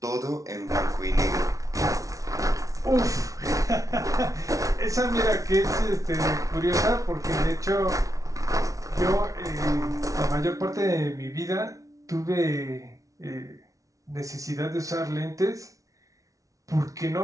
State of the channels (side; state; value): left; late; 0.17 ms